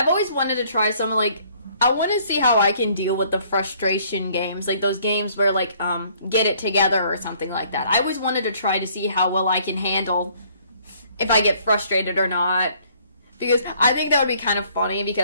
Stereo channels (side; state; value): both; inverted; correlation -0.61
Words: always wanted to try some I want to see how I can deal with the frustration games, like those games where Get It Together or something like that. I always wanted to try to see how well I can handle if I get frustrated or not, because I think that would be kind of funny